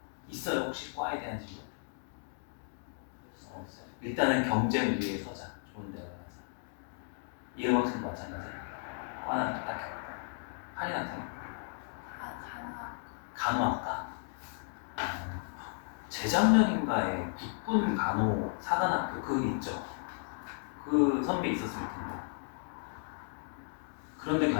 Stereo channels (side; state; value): right; silent; 55 dB below the other